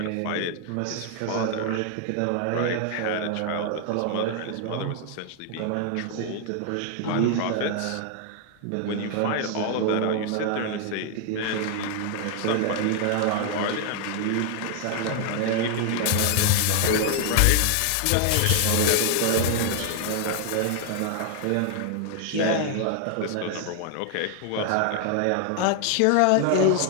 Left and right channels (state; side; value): different; both; correlation 0.00